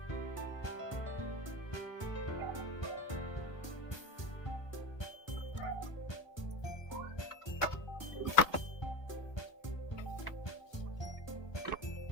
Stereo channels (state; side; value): late; right; 1.2 ms